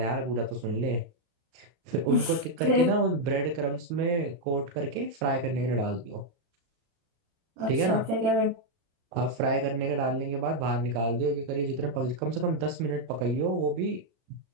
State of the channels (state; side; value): late; left; 35 ms